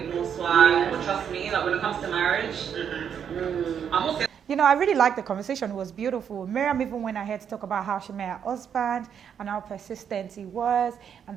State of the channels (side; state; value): left; quieter; 8.0 dB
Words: more swag, but trust me, like when it comes to marriage, I'm also... You know, I really liked the conversation. It was beautiful. Miriam even went ahead to talk about how she met her husband and how persistent he was.